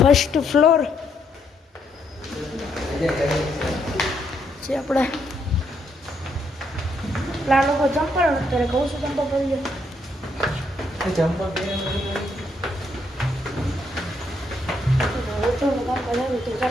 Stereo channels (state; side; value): normal; both; correlation 0.74